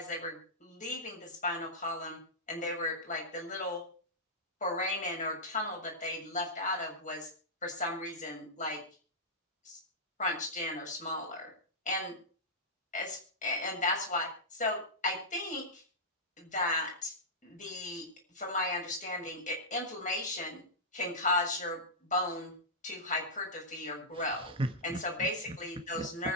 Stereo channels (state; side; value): normal; both; correlation -0.13